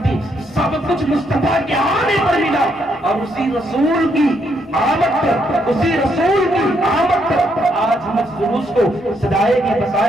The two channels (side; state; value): both; normal; correlation 0.75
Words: سب کچھ مصطفیٰ کے آنے پر ملا اور اسی رسول کی آمد پر, اسی رسول کی آمد پر آج ہم اس جلوس کو سجائے گے